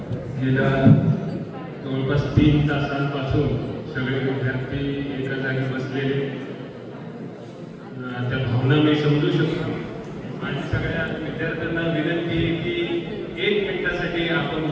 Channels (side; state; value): both; identical; correlation 1.00